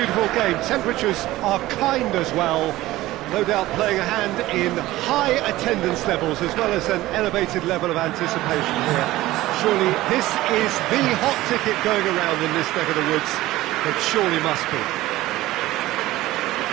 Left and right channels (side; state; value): left; quieter; 16.9 dB